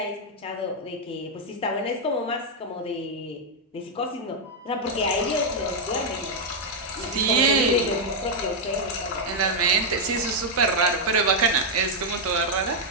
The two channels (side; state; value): both; normal; correlation -0.02